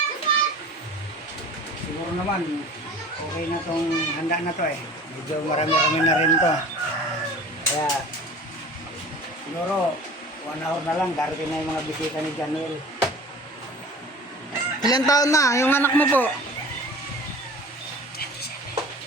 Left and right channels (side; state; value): both; normal; correlation 0.42